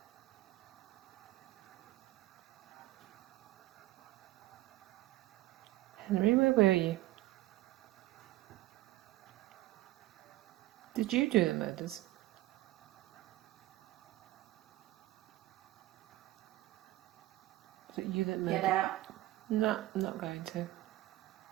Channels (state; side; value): quieter; left; 17.3 dB